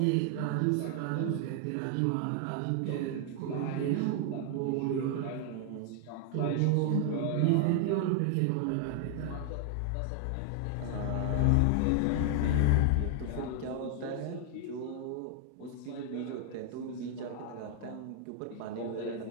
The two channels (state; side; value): different; both; correlation 0.00